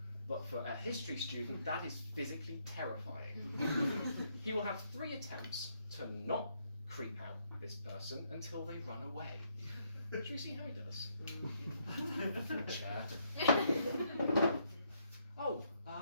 but for a history student that is physically terrifying. He will have 3 attempts to not creep out this person until they run away. Should we see how he does? Chair. Oh,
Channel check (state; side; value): inverted; both; correlation -0.73